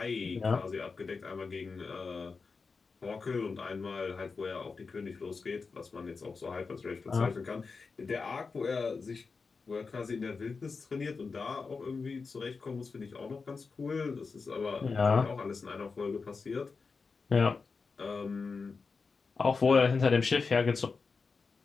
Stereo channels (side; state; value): right; quieter; 4.7 dB